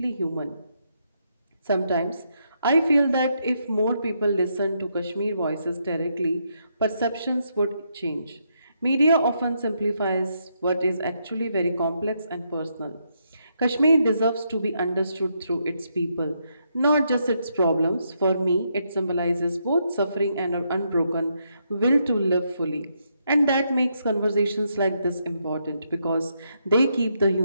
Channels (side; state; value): both; inverted; correlation -0.78